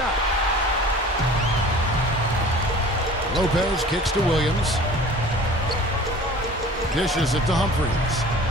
Lopez kicks to Williams. Dishes it to Humphries.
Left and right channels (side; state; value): both; normal; correlation 0.44